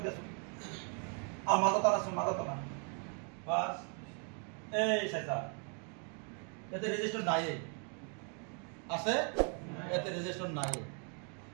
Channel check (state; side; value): quieter; left; 39.4 dB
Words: দিয়াছ আর মাথাটা না বাস এই চাইছা এতে রেজিস্টার নাই আছে এতে রেজিস্টার নাই